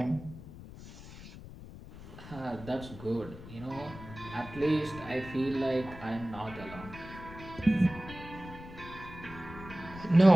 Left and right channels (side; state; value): left; noise; rumble, 15 dB below the sound